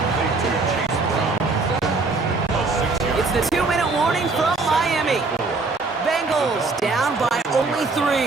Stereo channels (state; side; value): quieter; left; 3.8 dB